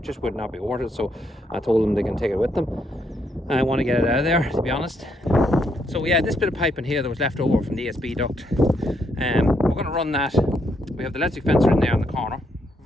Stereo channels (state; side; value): normal; both; correlation 0.76